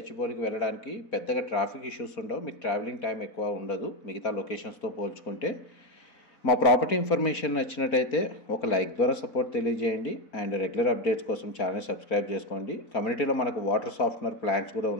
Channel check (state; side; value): late; right; 4.1 ms